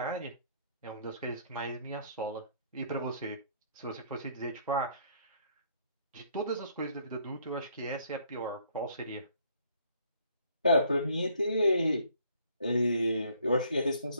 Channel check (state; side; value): inverted; both; correlation -0.64